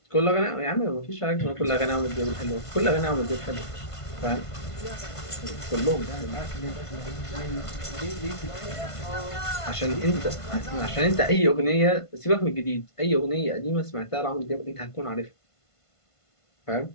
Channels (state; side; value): late; right; 1.5 ms